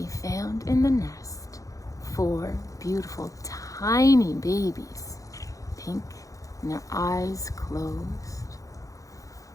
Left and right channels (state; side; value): late; right; 0.16 ms